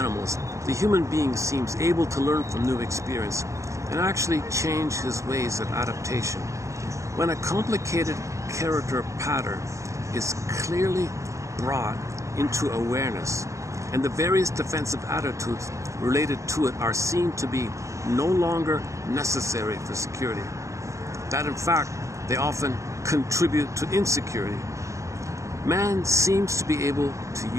the human being seems able to learn from new experience and actually change his ways of adaptation. When a complicated character pattern is clearly brought into awareness, and the various defensive attitudes related to it are seen to be no longer necessary for security, that in fact they often contribute to insecurity, man seems to be able to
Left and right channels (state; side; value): late; left; 0.15 ms